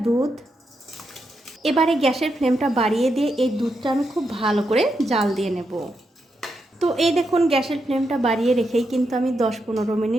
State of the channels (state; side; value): normal; both; correlation 0.83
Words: দুধ। এবারে গ্যাসের ফ্লেমটা বাড়িয়ে দিয়ে এই দুধটা আমি খুব ভালো করে জাল দিয়ে নেব। তো এই দেখুন গ্যাসের ফ্লেমটা বাড়িয়ে রেখেই কিন্তু আমি 10-15